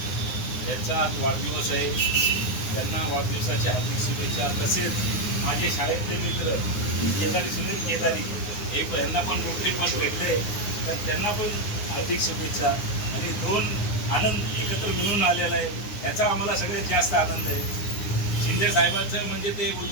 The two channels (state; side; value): late; right; 9.7 ms